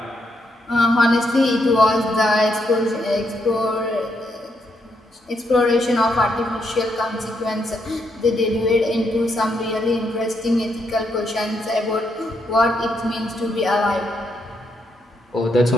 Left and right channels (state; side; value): normal; both; correlation 0.78